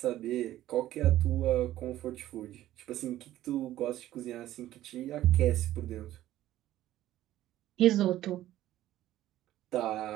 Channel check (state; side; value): quieter; left; 14.0 dB